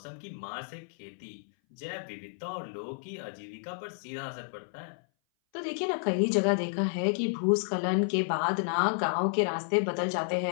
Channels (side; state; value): right; silent; 57 dB below the other